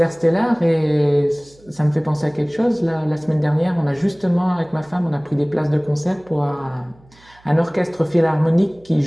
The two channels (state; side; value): noise; right; hum, 29 dB below the sound